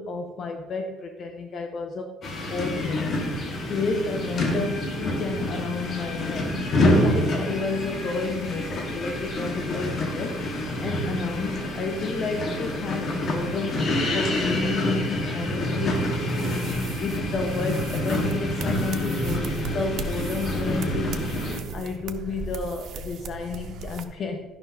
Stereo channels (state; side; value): normal; both; correlation 0.64